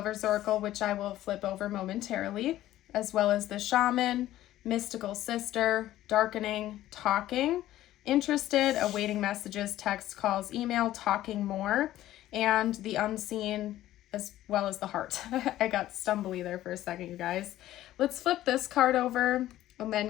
oracle, which I will flip over momentarily, as well as the shaman, mystical sister, darkening, talking, interested, awaiting messages, text, calls, email, talking more, and the unseen, as well as the heart. I got stumbly there for a second, you guys. Let's flip this card over and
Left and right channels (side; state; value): right; quieter; 14.1 dB